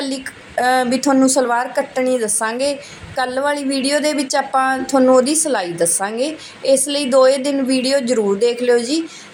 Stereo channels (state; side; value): identical; both; correlation 1.00